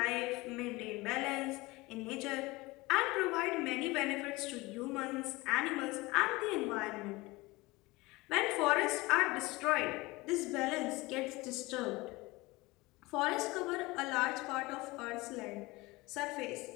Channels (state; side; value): quieter; right; 22.0 dB